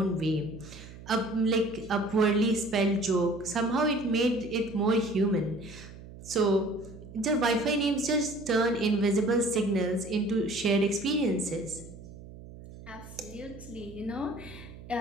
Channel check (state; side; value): noise; right; hum, 16 dB below the sound